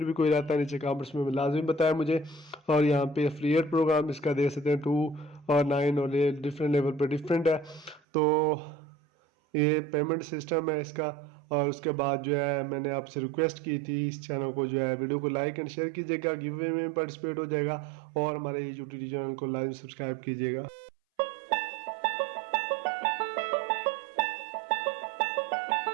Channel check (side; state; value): left; drops out; at 8.0 s